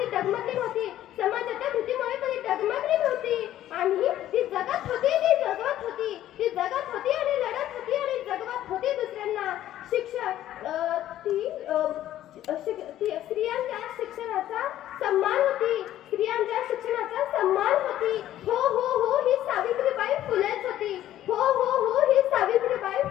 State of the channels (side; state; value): right; quieter; 12.8 dB